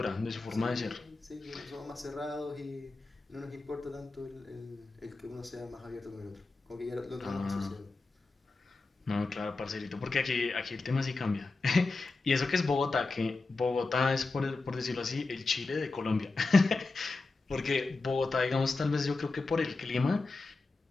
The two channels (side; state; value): right; quieter; 3.6 dB